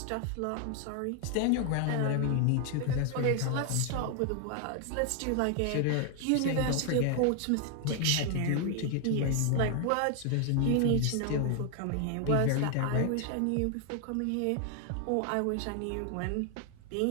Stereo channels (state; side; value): different; both; correlation 0.00